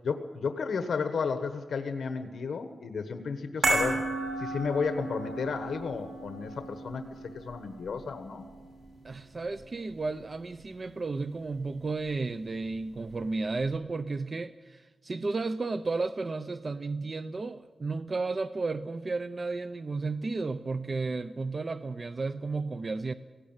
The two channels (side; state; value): both; normal; correlation 0.87